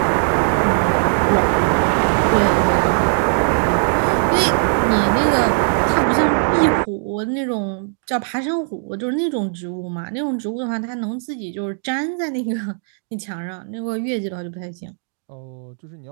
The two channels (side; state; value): left; silent; digital silence